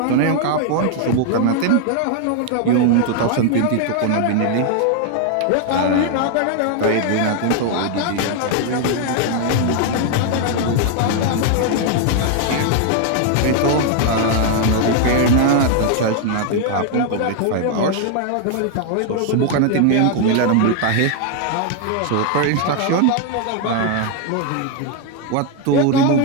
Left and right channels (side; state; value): both; different; correlation 0.00